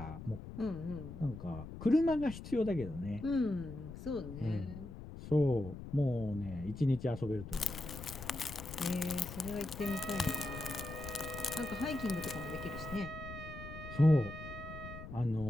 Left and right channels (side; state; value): left; noise; rumble, 11 dB below the sound